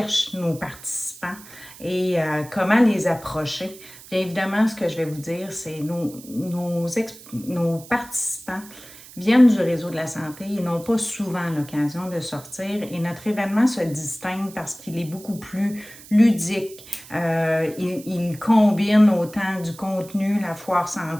nos participants et comment les approcher, bien évidemment, ce que je vais vous dire, c'est nos participants viennent du réseau de la santé et n'ont pas souvent l'occasion de sortir. Et notre événement se distingue parce qu'il est beaucoup plus ludique. Il combine autant du contenu, la foire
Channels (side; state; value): right; noise; hiss, 19 dB below the sound